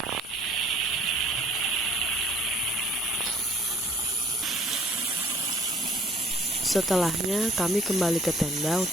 Setelahnya kami kembali ke tenda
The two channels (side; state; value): both; normal; correlation 0.56